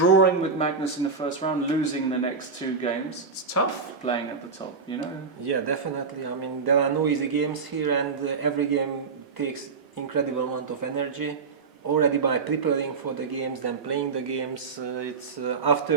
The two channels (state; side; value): quieter; left; 4.9 dB